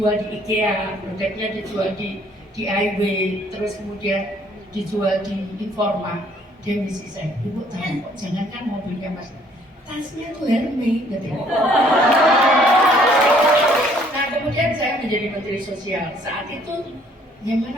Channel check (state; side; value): normal; both; correlation 0.62